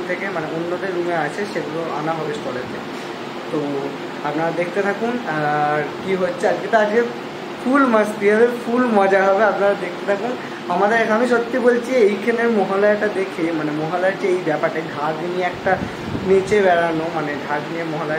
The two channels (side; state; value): both; identical; correlation 1.00